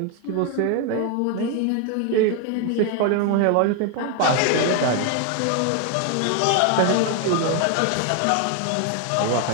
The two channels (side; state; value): both; different; correlation 0.01